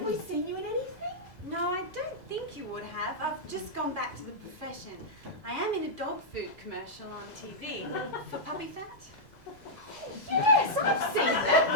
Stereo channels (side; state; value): right; late; 2.0 ms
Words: we seen you in anything? No, I don't think you would have. I've just gone back to the profession. I am in a dog food commercial on TV for puppy fat. Yes, I've seen that